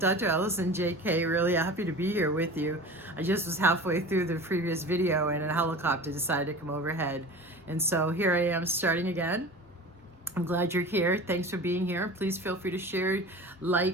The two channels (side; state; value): both; normal; correlation 0.36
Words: Allison JK, really happy to be here with you. I just was halfway through the previous video and a helicopter decided to come overhead. And so here I am starting again. I'm glad you're here. Thanks for being here. Please feel free to share,